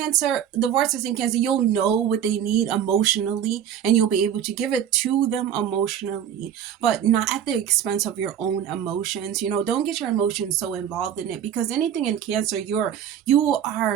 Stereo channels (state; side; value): quieter; left; 9.4 dB